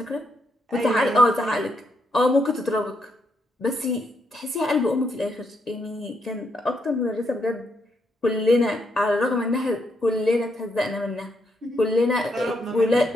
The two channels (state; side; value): normal; both; correlation 0.78